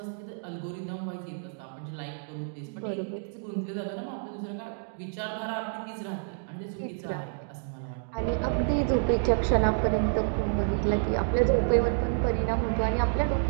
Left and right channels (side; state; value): left; silent; digital silence